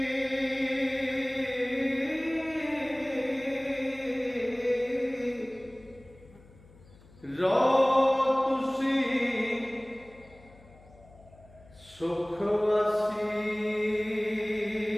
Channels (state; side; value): noise; left; hum, 24 dB below the sound